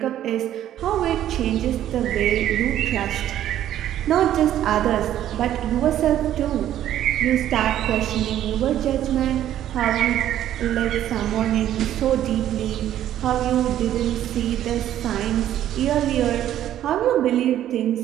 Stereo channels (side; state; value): left; quieter; 11.8 dB